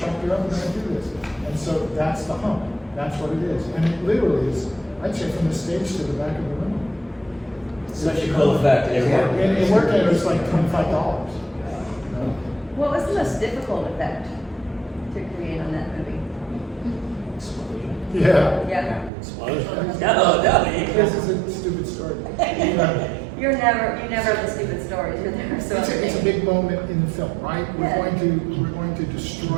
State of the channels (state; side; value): drops out; left; at 19.1 s